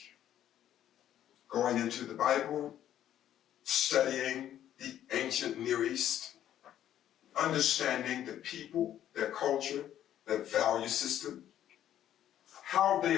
going into the Bible, studying the ancient Near East, understanding the people, their culture, their value system, how they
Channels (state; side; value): quieter; right; 11.3 dB